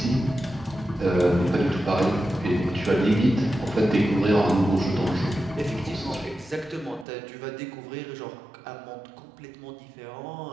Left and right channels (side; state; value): left; drops out; at 7.1 s